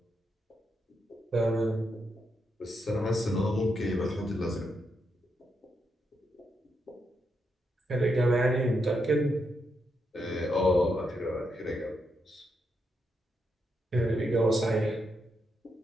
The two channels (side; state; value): both; normal; correlation 0.82